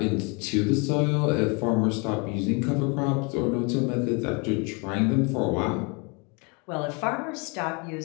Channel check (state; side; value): quieter; right; 30.8 dB